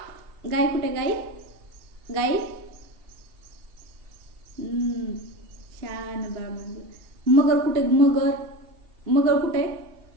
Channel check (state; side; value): late; left; 2.8 ms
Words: गाय कुठे? गाय. गाय. छान बाळ म्हणजे. मगर कुठे? मगर. मगर कुठे?